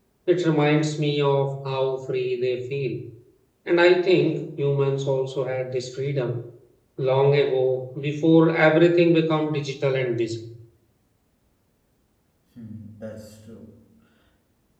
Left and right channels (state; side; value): identical; both; correlation 1.00